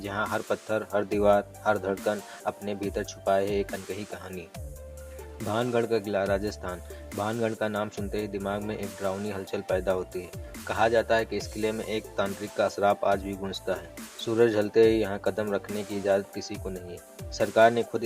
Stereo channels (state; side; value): identical; both; correlation 1.00